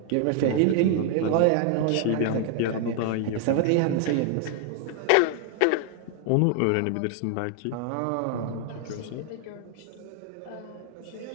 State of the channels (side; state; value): both; different; correlation 0.00